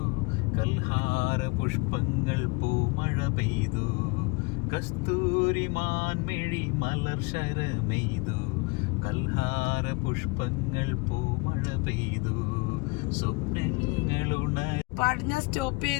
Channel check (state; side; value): quieter; right; 27.4 dB